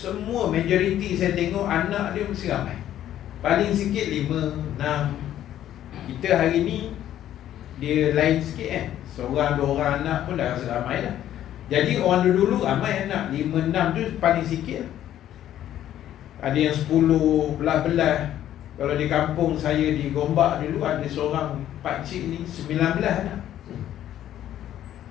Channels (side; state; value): right; quieter; 11.8 dB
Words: majoriti saya tengok anak dia mesti ramai. Paling sikit 5, 6. Kita hari ni dia lain sikit kan, seorang 2 orang anak pun dah rasa ramai dah. Jadi orang dulu ramai anak, 5, 6 tu paling sikit lah. Ada yang 10, belah-belah. Kalau di kampung saya di Gombak dulu, ada seorang pakcik ni 19 anak.